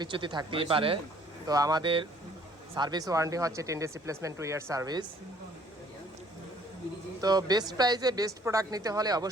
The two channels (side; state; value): both; normal; correlation 0.58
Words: থাকতেই পারে। তো আমাদের সার্ভিস ওয়ারেন্টি হচ্ছে 10 days রিপ্লেসমেন্ট, 2 year সার্ভিস। তো বেস্ট প্রাইজে বেস্ট প্রোডাক্ট নিতে হলে